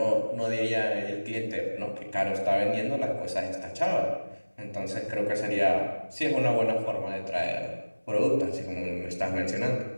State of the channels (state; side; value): inverted; both; correlation -1.00